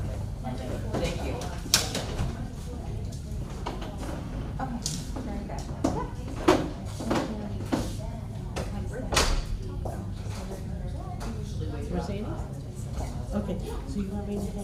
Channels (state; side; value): identical; both; correlation 1.00